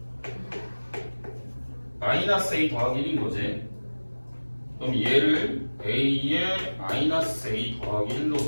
마이너스 a 더하기 1인 거지. 그럼 얘를 a에 마이너스 a 더하기 1로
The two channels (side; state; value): both; inverted; correlation -1.00